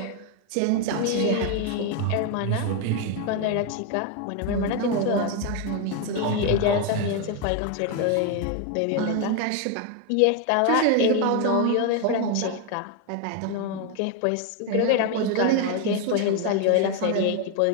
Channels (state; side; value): different; both; correlation 0.01